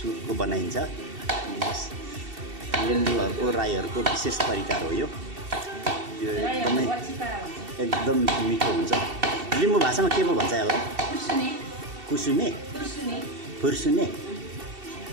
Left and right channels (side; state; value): left; late; 2.7 ms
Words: बनाइन्छ। लिम्बूहरूको राईहरूको विशेष परिकार हो यो। एकदम मिठो हुन्छ। लिम्बू भाषामा के पो भन्छ यसलाई? कुसुमे फुर्सुने।